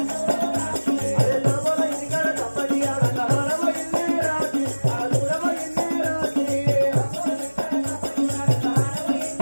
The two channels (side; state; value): both; inverted; correlation -1.00